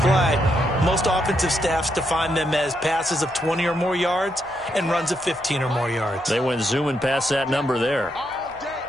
most offensive staffs define them as passes of 20 or more yards and runs of 15 or more yards. They went zooming past that number there.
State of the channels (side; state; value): right; noise; hum, 26 dB below the sound